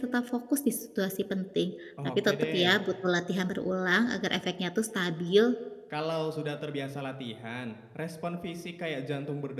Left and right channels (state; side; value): identical; both; correlation 1.00